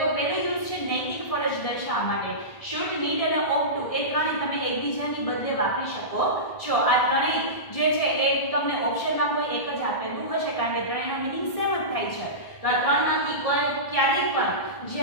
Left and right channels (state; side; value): late; right; 1.6 ms